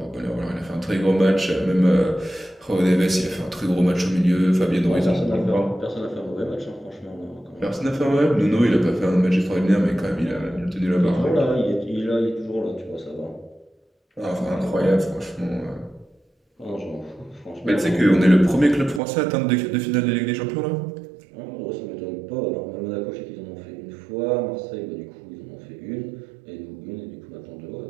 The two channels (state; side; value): drops out; left; at 19.0 s